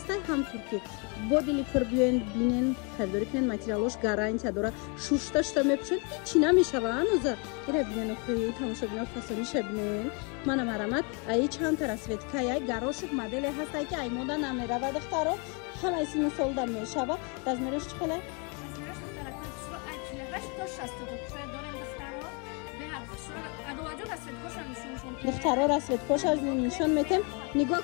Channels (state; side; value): quieter; right; 34.2 dB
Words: هم ترکی با دلی پر بینن خریداری کنن ماتریالش گارانتی داره شوشتاشتا میپوشن چی نمیشوه هنوزه ایره بینن اخوی تماشا بینن فسونیشه بینن منم مرمت ای چند تا رسویتکه ای گراشک مدل هسته که ای مودا نمیره و دخترها همه ایسی مثال دم میشوه رزمیرش چخله؟ رزمیرش دخترکو شروع اکیله تا 62 شاید دارم دخترها به هر شروع ادواجو رسویت کوشن نشونشون دخترها رسویت کوش از نشون میتم